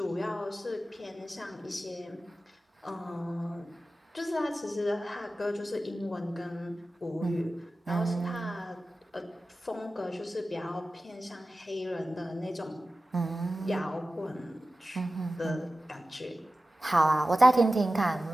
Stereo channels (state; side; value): normal; both; correlation 0.95